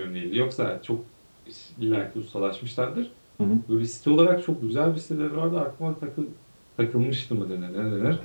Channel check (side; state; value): both; inverted; correlation -1.00